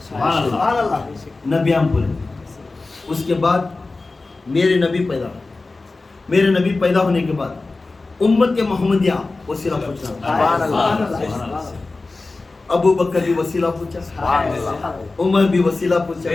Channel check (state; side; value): quieter; right; 3.5 dB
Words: سبحان اللہ نبیان پورے، اس کے بعد میرے نبی پیدا ہوئے، میرے نبی پیدا ہونے کے بعد امت محمدیہ وسیلہ پوچھا، سبحان اللہ ابو بکر بھی وسیلہ پوچھا، سبحان اللہ عمر بھی وسیلہ پوچھا،